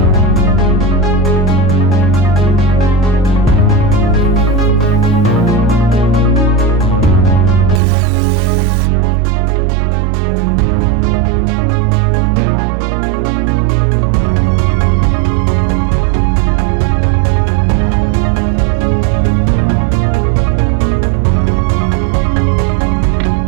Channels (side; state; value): left; drops out; at 7.8 s